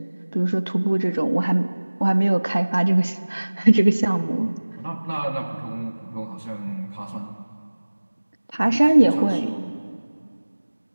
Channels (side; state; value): both; inverted; correlation -1.00